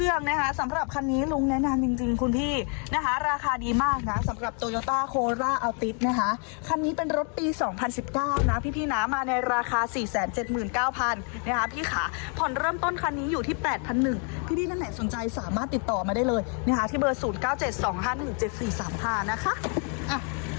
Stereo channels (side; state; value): right; quieter; 39.9 dB